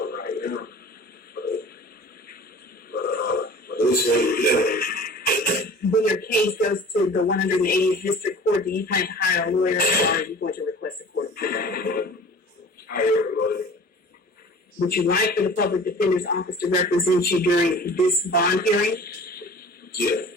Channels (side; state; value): both; normal; correlation 0.43